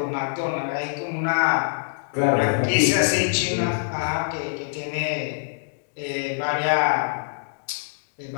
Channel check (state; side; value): silent; right; digital silence